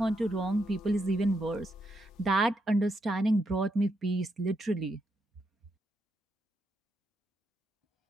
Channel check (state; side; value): normal; both; correlation 0.81